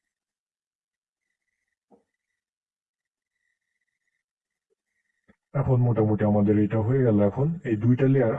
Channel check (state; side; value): identical; both; correlation 1.00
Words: এখন মোটামুটি আমাদের এটা হয়ে গেল। এখন এই দুইটা লেয়ার